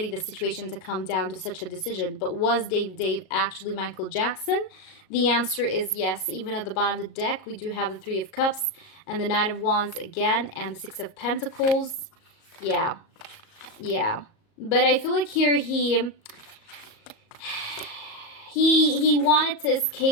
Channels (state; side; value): late; right; 37 ms